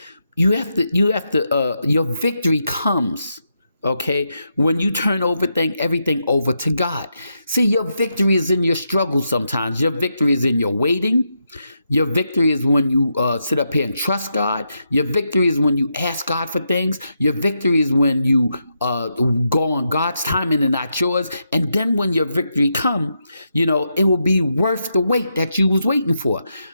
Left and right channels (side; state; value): both; inverted; correlation -0.84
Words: have to, your victory comes, okay, when you turn everything over to God. See, your victory is in your struggle sometimes. Your victory is in your waiting. Your victory is when you sit up here and trust God. Your victory is when you ask God for things. Your victory is when you go on God's timing and not yours. And then when your victory come, it will be worth the wait that you was waiting for.